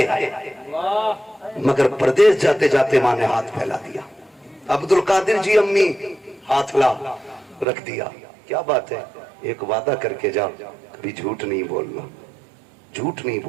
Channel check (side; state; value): left; drops out; at 7.7 s